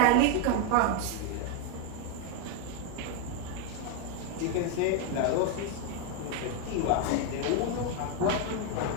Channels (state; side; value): different; both; correlation 0.01